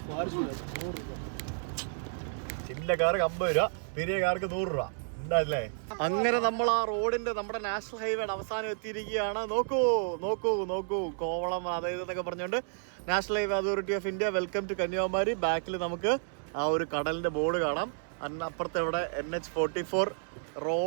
ചിന്ന കുഞ്ഞ കാർക്ക് 50 രൂപ, പെരിയ കാർക്ക് 100 രൂപ. ഉണ്ടല്ലേ? അങ്ങനെ നമ്മൾ ആ റോഡിന്റെ നമ്മുടെ നാഷണൽ ഹൈവേയുടെ അവസാനം എത്തിയിരിക്കുകയാണ്. നോക്കൂ നോക്കൂ നോക്കൂ, കോവളം അതായത് എന്നൊക്കെ പറഞ്ഞുകൊണ്ട് national highway authority of India welcome to Kanyakumari. ബാക്കിൽ നമുക്ക് ആ ഒരു കടലിന്റെ ബോർഡ് കാണാം. അപ്പുറത്തെ ഇവിടെ NH44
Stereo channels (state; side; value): silent; left; digital silence